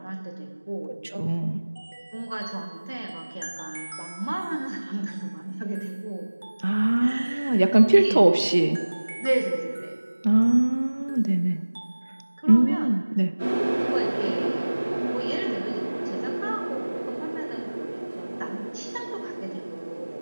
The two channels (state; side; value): inverted; both; correlation -1.00